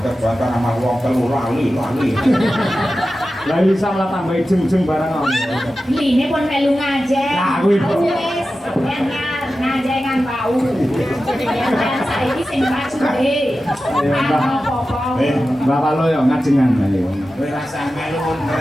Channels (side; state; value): both; normal; correlation 0.93